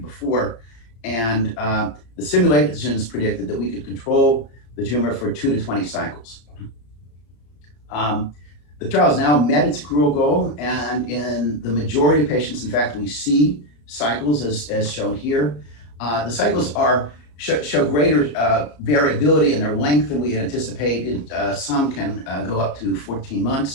And the simulations predicted that we could control the tumor for 2 to 20 cycles. The trial has now met its accrual goal, and in the majority of patients, in fact, we see cycles as shown here. The cycles show greater variability in their length than we had anticipated. Some can go up to 14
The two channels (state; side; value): late; right; 34 ms